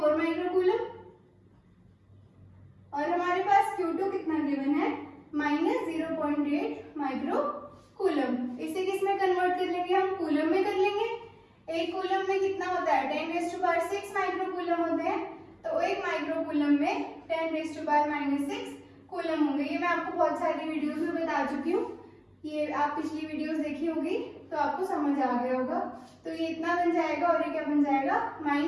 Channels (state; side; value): identical; both; correlation 1.00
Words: माइक्रोकूलम, और हमारे पास Q2 कितना गिवन है, -0.8 माइक्रोकूलम। इसे किस में कन्वर्ट कर लेंगे, हम कूलम में कर लेंगे। एक कूलम में कितना होता है, 10⁻6 माइक्रोकूलम होते हैं, तो एक माइक्रोकूलम में 10⁻⁻6 कूलम होंगे। ये मैं आपको बहुत सारी वीडियोस में बता चुकी हूँ, ये आप पिछली वीडियोस देखी होगी तो आपको समझ आ गया होगा। तो ये इतना बन जाएगा, और ये क्या बन जाएगा,